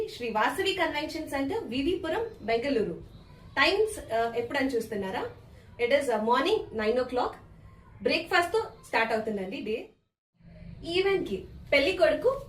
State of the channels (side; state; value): both; identical; correlation 1.00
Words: Sri Vasavi convention centre, Vivipuram, Bengaluru. Times ఎప్పుడని చూస్తున్నారా? It is morning 9 o'clock. Breakfast తో స్టార్ట్ అవుతుందండి డే. ఈవెంట్ కి పెళ్లి కొడుకు